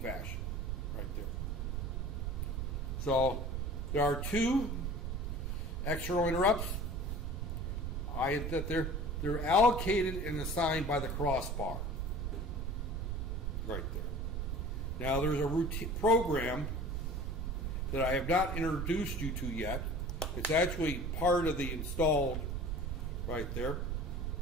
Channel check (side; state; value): right; noise; rumble, 2 dB below the sound